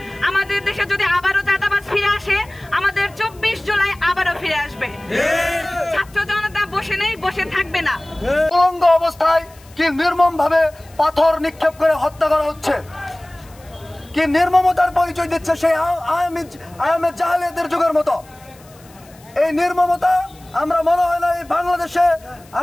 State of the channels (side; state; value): left; noise; hiss, 26 dB below the sound